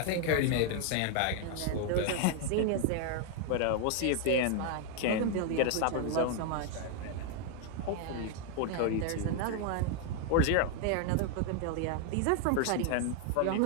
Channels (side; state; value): both; different; correlation 0.00